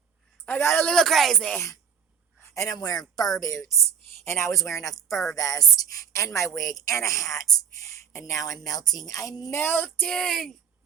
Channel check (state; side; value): quieter; left; 7.4 dB